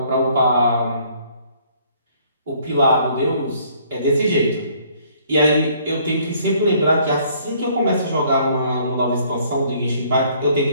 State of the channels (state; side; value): inverted; both; correlation -0.62